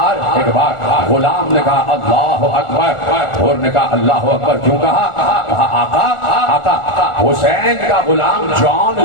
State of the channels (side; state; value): right; late; 1.4 ms